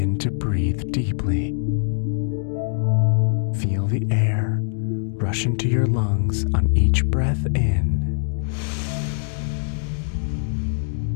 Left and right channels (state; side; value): silent; right; digital silence